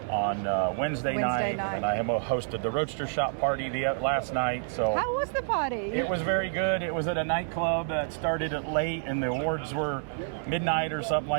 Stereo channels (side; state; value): left; silent; 58 dB below the other